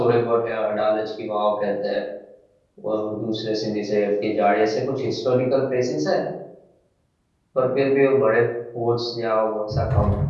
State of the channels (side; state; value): both; identical; correlation 1.00